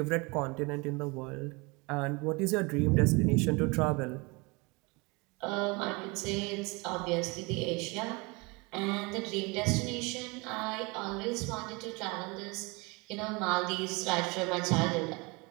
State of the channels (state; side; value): quieter; left; 27.2 dB